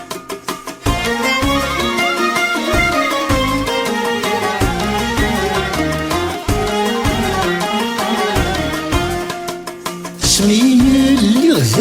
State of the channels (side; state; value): both; identical; correlation 1.00